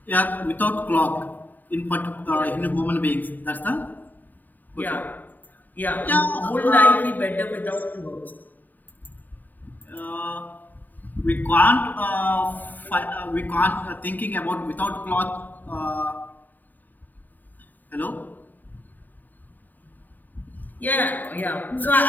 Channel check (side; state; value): right; late; 0.087 ms